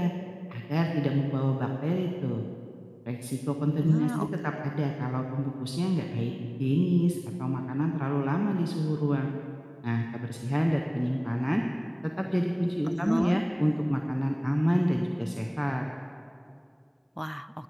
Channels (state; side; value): identical; both; correlation 1.00